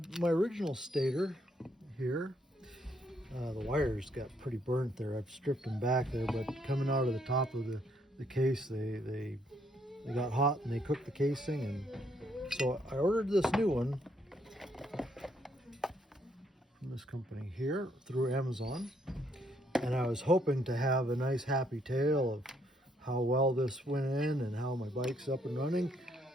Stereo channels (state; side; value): normal; both; correlation 0.71